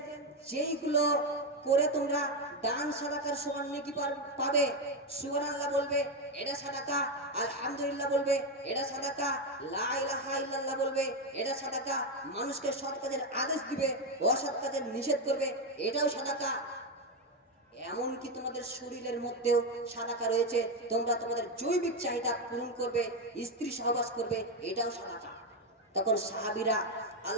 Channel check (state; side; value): normal; both; correlation 0.08